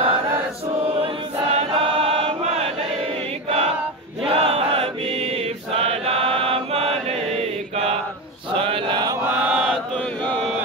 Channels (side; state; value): both; normal; correlation 0.19